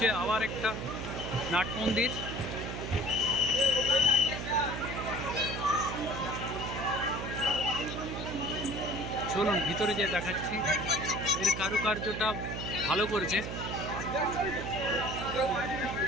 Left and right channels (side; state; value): right; noise; hum, 5 dB below the sound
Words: আবার একটা নাট মন্দির। চলুন ভিতরে যে দেখাচ্ছি, এর কারুকার্যটা ভালো করেছে।